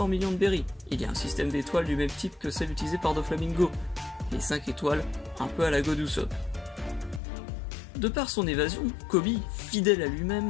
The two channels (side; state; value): right; drops out; at 7.2 s